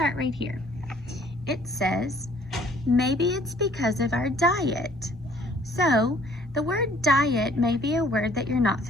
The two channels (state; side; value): normal; both; correlation 0.58